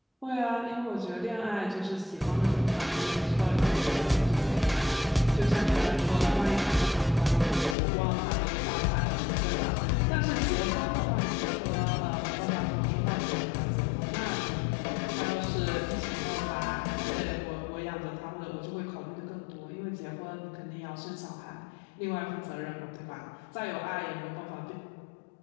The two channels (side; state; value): right; drops out; at 7.8 s